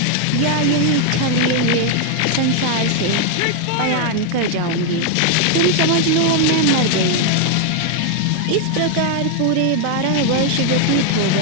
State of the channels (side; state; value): both; different; correlation 0.00